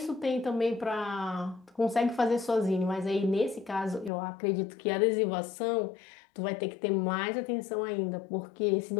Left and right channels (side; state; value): right; drops out; at 4.1 s